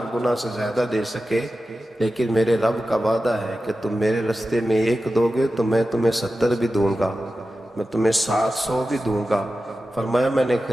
گنا سے زیادہ دے سکے، لیکن میرے رب کا وعدہ ہے کہ تم میرے رستے میں 1 دو گے تو میں تمہیں 70 بھی دوں گا، میں تمہیں 700 بھی دوں گا. فرمایا میں نے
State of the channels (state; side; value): normal; both; correlation 0.93